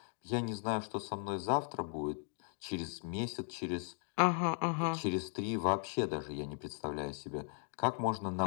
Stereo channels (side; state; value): right; silent; 53 dB below the other